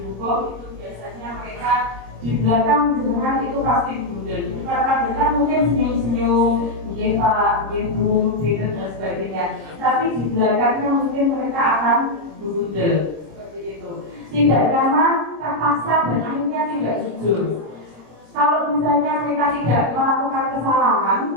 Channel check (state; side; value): late; left; 26 ms